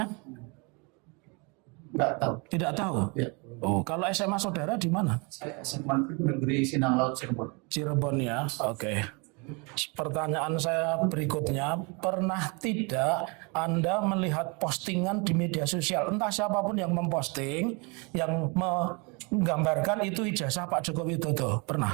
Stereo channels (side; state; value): left; quieter; 30.8 dB